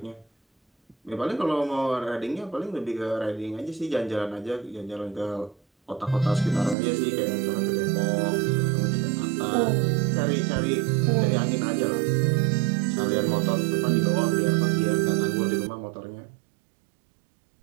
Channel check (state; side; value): drops out; left; at 6.8 s